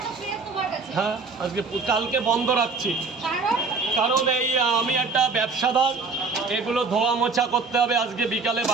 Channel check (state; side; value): quieter; left; 4.3 dB